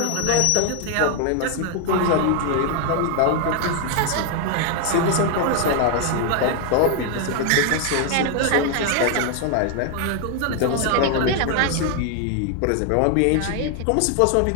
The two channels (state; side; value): different; both; correlation 0.01